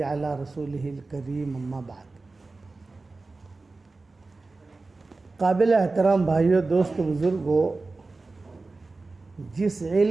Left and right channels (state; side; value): quieter; left; 3.6 dB